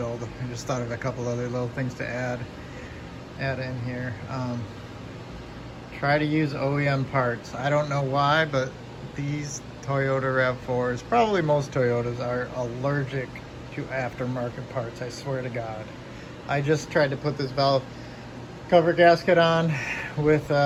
I just thought of a couple other little things to add in here. Try to use OEM parts. I don't know why, but these Toyota RAV4s, probably most Toyotas, are allergic to aftermarket parts, I swear to God. I just tried to put this valve cover gasket on with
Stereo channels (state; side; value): identical; both; correlation 1.00